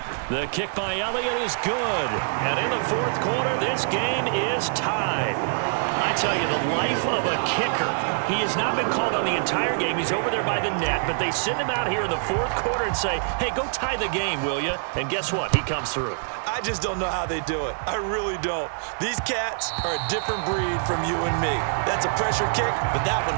The kick by Elliott is good. And in the 4th quarter, this game is tied. I tell you, the life of a kicker. He has not been called on the entire game. He's over there by the net, but they send him out here in the 4th quarter and say, hey, go tie the game, will you? And guess what? He comes through. I just don't know how they do it. I really don't. These cats are a different breed from you and me. That's a pressure kick, but that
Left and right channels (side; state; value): left; silent; digital silence